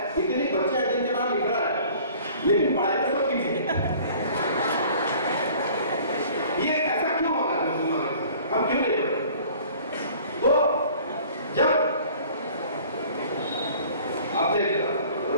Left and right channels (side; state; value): both; inverted; correlation -0.50